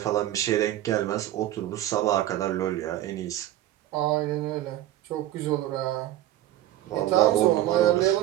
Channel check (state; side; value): quieter; left; 13.8 dB